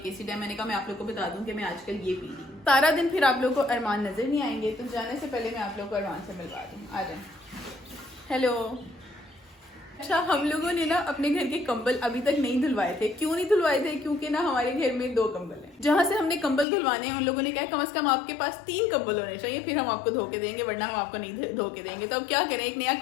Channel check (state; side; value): drops out; right; at 16.7 s